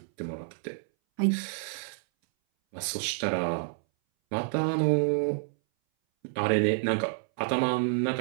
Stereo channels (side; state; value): left; silent; 59 dB below the other